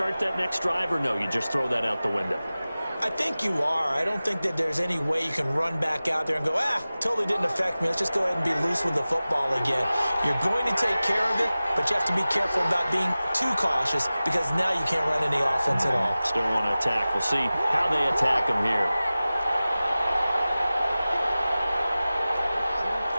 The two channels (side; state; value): both; inverted; correlation -0.97